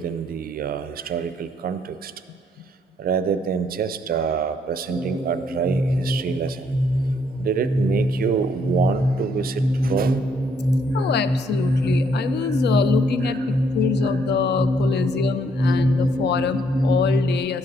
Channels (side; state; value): both; normal; correlation 0.69